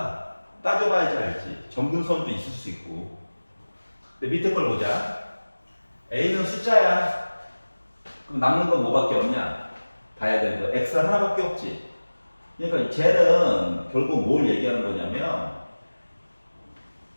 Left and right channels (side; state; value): both; inverted; correlation -1.00